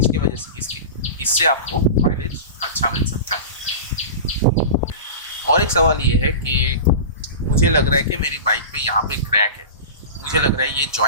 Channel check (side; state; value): both; inverted; correlation -0.30